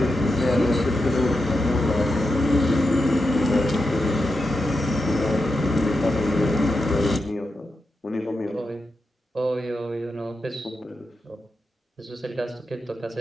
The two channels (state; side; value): normal; both; correlation 0.88